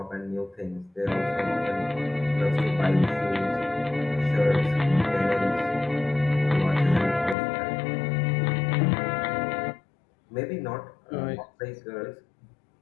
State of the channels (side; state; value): right; drops out; at 7.4 s